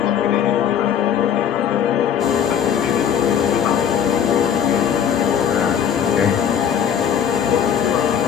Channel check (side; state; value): right; quieter; 8.6 dB